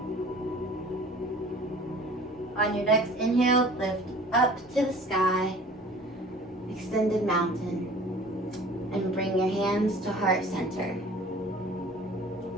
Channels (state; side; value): normal; both; correlation 0.47